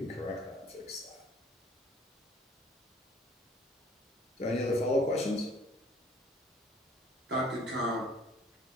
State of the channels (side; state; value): both; normal; correlation 0.55